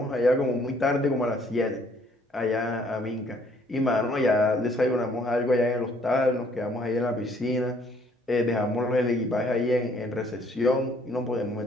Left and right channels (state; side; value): normal; both; correlation 0.62